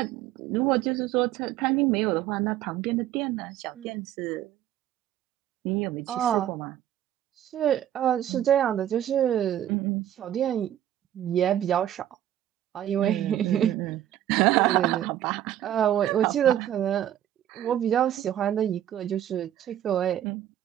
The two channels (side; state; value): left; quieter; 11.7 dB